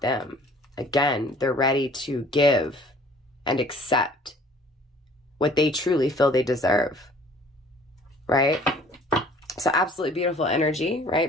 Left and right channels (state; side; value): normal; both; correlation 0.53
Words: Again, they're ready to give and accept what they truly feel they deserve, right? So absolutely beautiful energy,